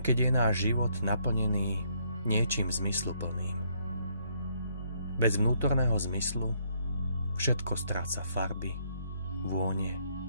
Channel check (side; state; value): both; inverted; correlation -0.70